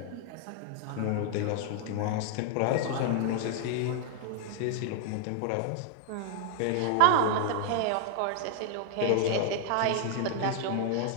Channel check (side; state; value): both; different; correlation 0.00